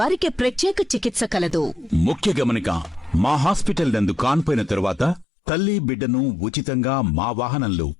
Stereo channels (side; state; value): right; drops out; at 5.2 s